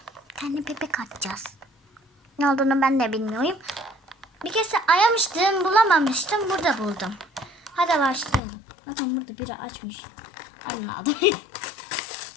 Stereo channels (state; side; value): drops out; right; at 8.4 s